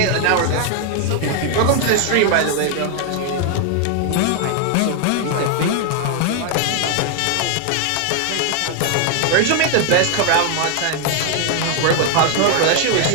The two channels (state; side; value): different; both; correlation 0.00